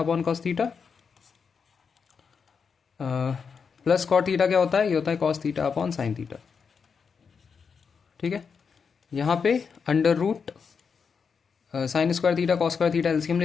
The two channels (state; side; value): quieter; right; 5.9 dB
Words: cos theta, plus cot theta क्या होता है, ये होता है cos theta upon sine theta. ठीक है, यहाँ पे √sin² theta cos² theta LCM